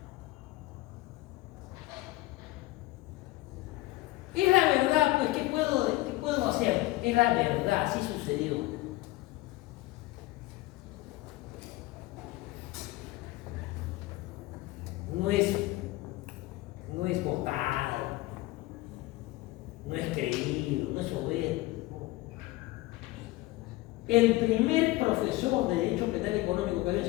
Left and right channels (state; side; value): quieter; right; 18.8 dB